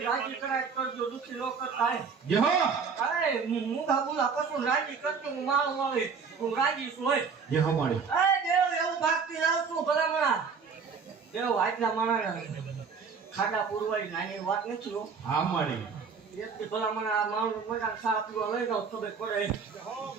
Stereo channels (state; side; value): quieter; left; 5.7 dB